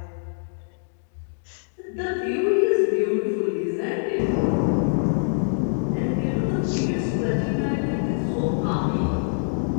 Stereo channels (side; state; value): right; silent; digital silence